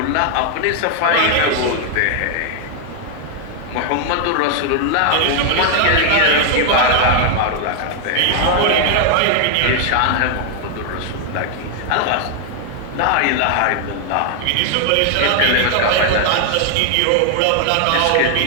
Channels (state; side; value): different; both; correlation 0.00